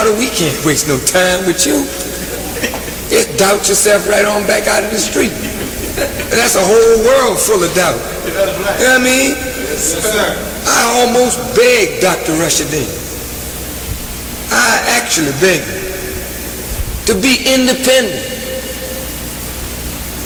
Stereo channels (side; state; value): both; identical; correlation 1.00